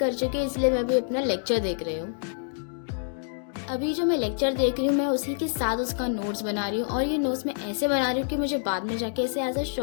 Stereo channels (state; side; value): silent; right; digital silence